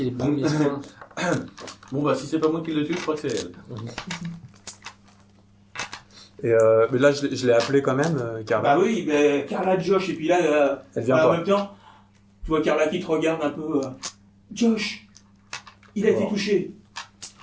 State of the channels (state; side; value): identical; both; correlation 1.00